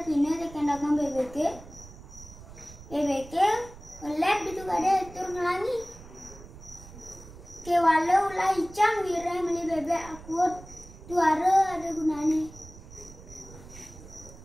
pina tekan dagang bebeke. Bebeke ngelep itu kada tur ngelangi. Kewala ulah icang wireh meli bebek akut tuara ada gunane.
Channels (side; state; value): right; noise; rumble, 17 dB below the sound